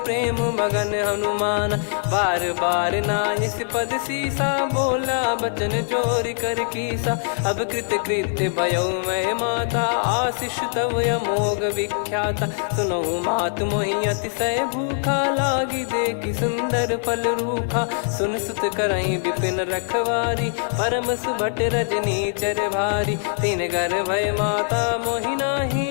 प्रेम मगन हनुमान। बार बार नायस पद सीसा, बोला बचन चोरी कर कीसा। अब कृत कृत्य भयो मैं माता, आशीष तव अमोघ विख्याता। सुनो मात मोहि अतिशय भूखा, लागी देखी सुंदर फल रूखा। सुन सुत करई विपिन रखवारी, परम सुभट रजनी चर भारी। तीन घर भय माता मोहि नाही,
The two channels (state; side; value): silent; right; 61 dB below the other